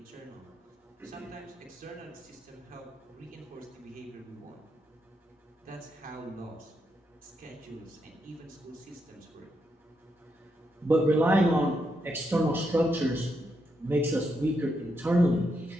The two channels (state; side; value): normal; both; correlation 0.81